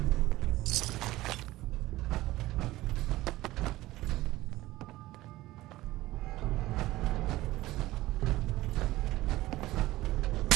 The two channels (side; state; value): left; quieter; 17.3 dB